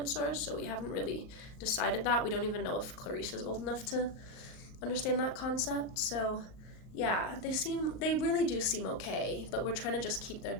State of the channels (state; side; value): late; right; 38 ms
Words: so we haven't really decided that. We don't even know if Clarice is old enough to understand that concept. So yeah, they really do seem okay, but we're trying to just keep their